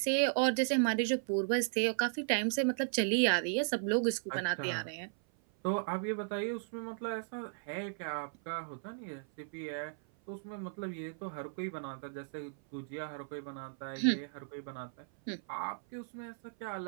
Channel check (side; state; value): left; silent; 54 dB below the other